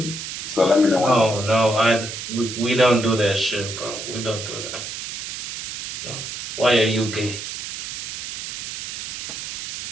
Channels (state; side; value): noise; right; hiss, 6 dB below the sound